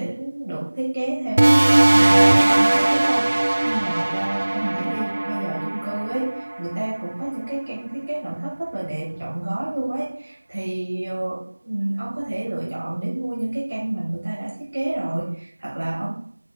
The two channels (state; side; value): inverted; both; correlation -1.00